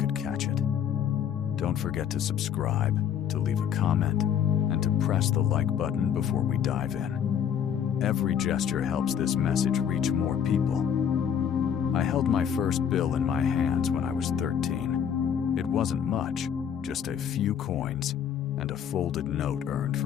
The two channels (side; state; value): right; quieter; 8.5 dB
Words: catch it. Don't forget to subscribe, to leave a comment, and to press the like button before we dive in. Every gesture helps this message reach more people. I held my first bill in my hands when I was 13. It wasn't much, just a few coins and a folded note earned